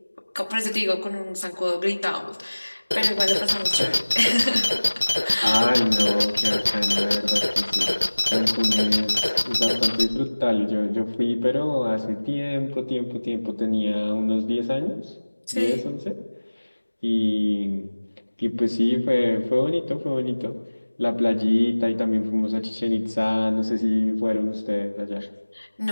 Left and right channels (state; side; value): inverted; both; correlation -1.00